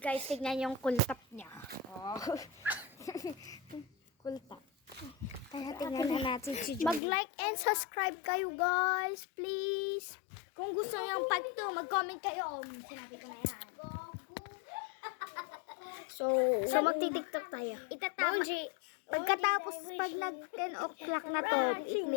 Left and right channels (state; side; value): drops out; right; at 7.0 s